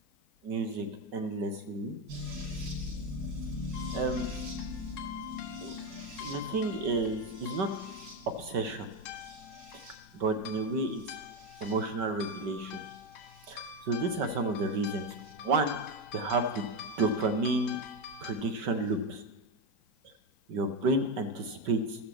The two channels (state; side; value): late; left; 5.2 ms